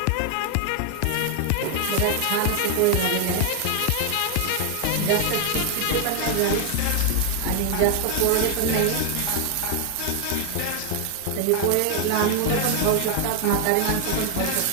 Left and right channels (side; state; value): both; different; correlation 0.00